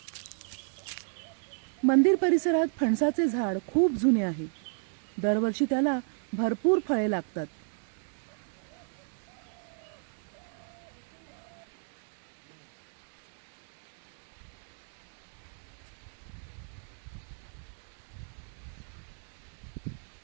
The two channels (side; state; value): left; silent; 56 dB below the other